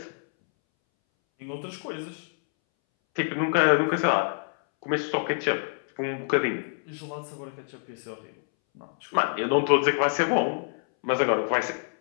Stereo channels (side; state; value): right; silent; 60 dB below the other